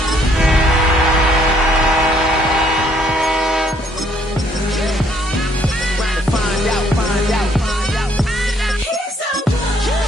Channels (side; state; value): both; normal; correlation 0.66